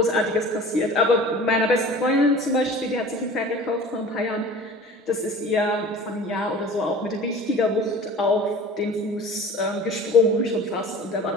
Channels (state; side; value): normal; both; correlation 0.41